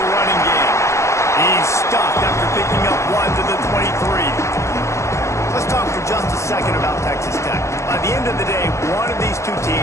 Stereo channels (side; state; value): right; late; 0.14 ms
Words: game. He's stopped after picking up 1 to the 23. Let's talk for just a second about Texas Tech. By the end of the day, one of these two